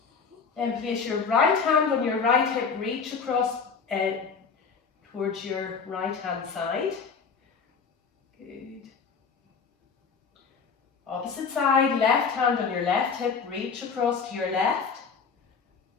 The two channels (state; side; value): quieter; right; 5.5 dB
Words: Then place your right hand on your right hip, reach across towards your right hand side. Good. Opposite side, left hand on your left hip, reach across to your left.